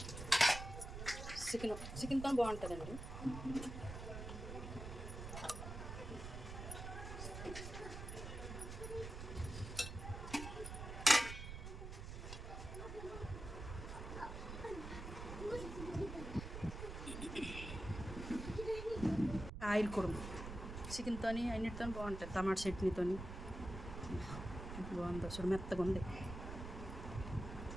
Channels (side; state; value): right; noise; rumble, 7 dB below the sound